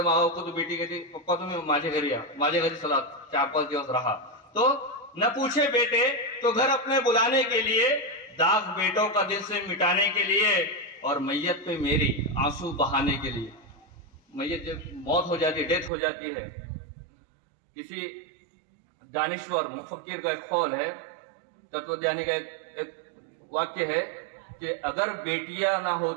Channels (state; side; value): drops out; left; at 15.9 s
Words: माँ बाप को, तो बेटी कहती पप्पा तुम्हें माझे घरी सलाह 4-5 दिवस रहा। तो न पूछे बेटे तो घर अपने बुलाने के लिए, दाग बेटों का दिल से मिटाने के लिए, और मैयत पे मेरी आंसू बहाने के लिए। मैयत जब मौत हो जाती है, डेथ हो जाती है, किसी दानिश्वर मुफक्किर का एक कौल है, तत्वज्ञानी का एक वाक्य है कि अगर बेटियां ना